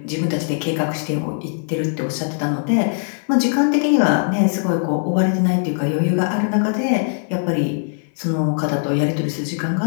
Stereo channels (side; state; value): right; silent; 55 dB below the other